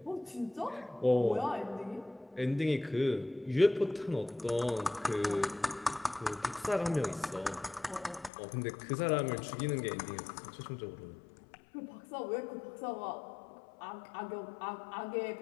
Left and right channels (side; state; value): right; drops out; at 8.3 s